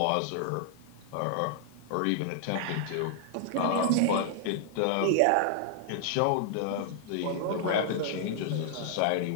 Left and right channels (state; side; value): different; both; correlation -0.01